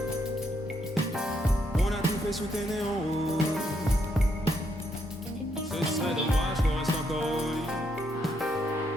On a tout fait sous tes néons. Ce serait dommage qu'on reste encore au lit.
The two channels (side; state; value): both; normal; correlation 0.76